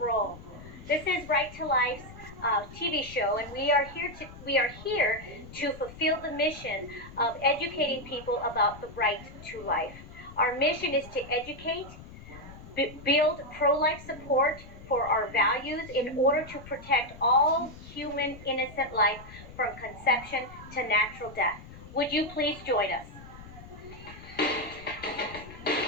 This is Right to Life's TV show, and we are here to fulfill the mission of educating people about the right to life. Our mission is to educate, build pro-life support for our values in order to protect all human innocent life from conception to natural death. Would you please join us?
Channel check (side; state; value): left; noise; rumble, 16 dB below the sound